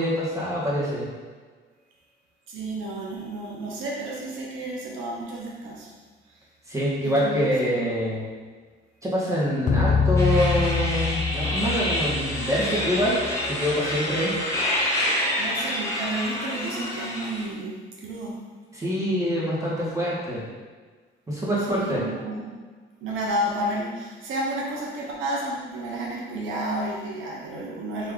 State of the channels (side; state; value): both; normal; correlation 0.44